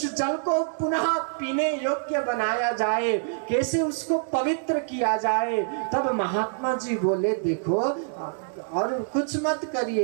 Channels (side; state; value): left; silent; digital silence